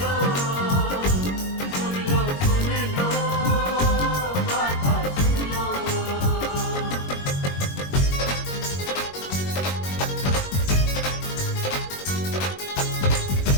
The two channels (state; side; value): late; right; 21 ms